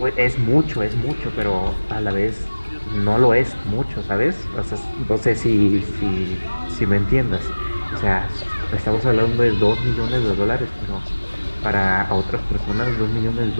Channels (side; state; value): both; inverted; correlation -1.00